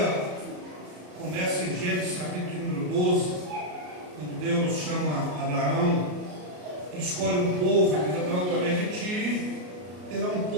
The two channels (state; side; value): late; left; 33 ms